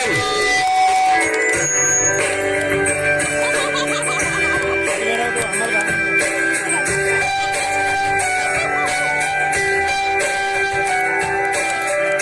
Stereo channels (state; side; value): identical; both; correlation 1.00